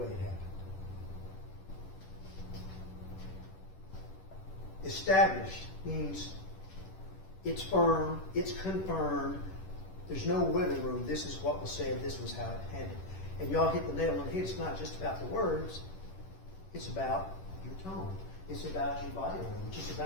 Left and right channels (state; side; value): late; right; 10 ms